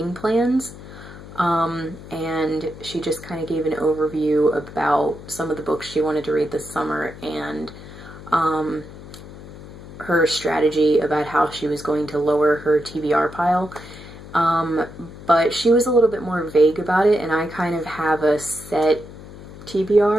Plans, and she just kind of gave an overview about some of the books she wanted to read this summer and her strategy about how she was going to lower her TBR pile. But she was a little bit more vague about it, and I kind of have a set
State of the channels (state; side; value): noise; left; hum, 15 dB below the sound